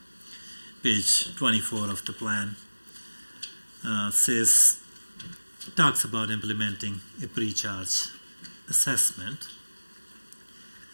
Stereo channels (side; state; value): both; inverted; correlation -1.00